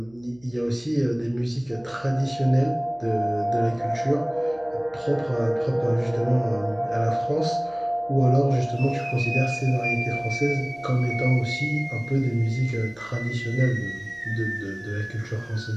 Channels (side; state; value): right; noise; hum, 28 dB below the sound